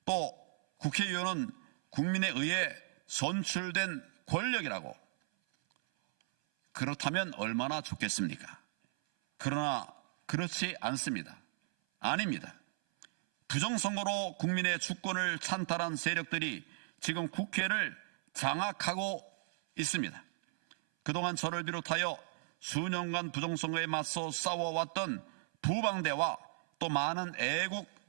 또 국회의원은 국민에 의해 선출된 권력이라고. 그렇다면 얼마나 좋겠습니까? 그러나 그렇지 않습니다. 아닙니다. 부정선거로 국민의 주권을 찬탈한 세력들이 지금 국회를 장악하고 있습니다. 그동안 저를 비롯하여 수년간 부정선거에 맞서 싸워왔던 부방대와 또 많은 애국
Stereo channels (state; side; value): silent; left; 54 dB below the other